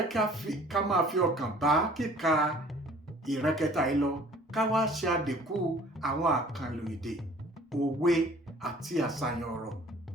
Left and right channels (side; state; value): both; normal; correlation 0.52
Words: ká máa fi ọkàn bá kíka ìran kẹta yìí lọ, ká wá ṣe àdínkù àwọn àkànlò èdè, òwe àti àṣàyàn ọ̀rọ̀